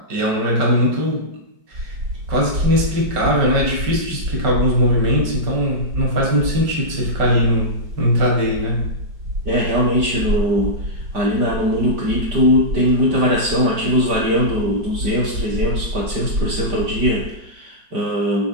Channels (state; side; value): late; left; 5.2 ms